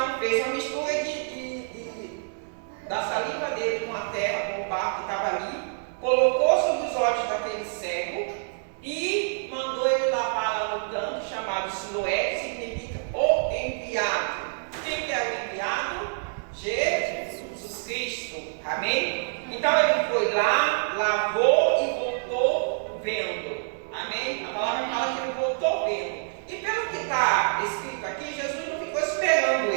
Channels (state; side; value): silent; left; digital silence